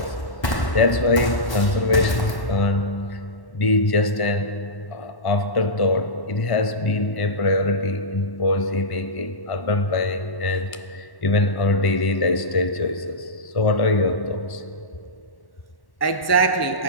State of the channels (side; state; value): right; late; 1.1 ms